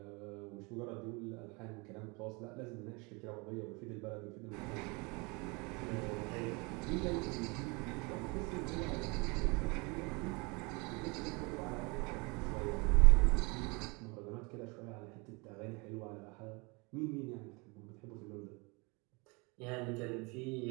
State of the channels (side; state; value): left; quieter; 28.6 dB